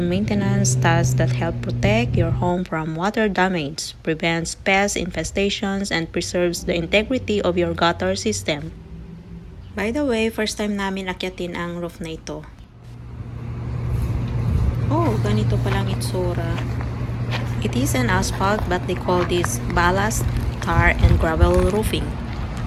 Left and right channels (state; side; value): identical; both; correlation 1.00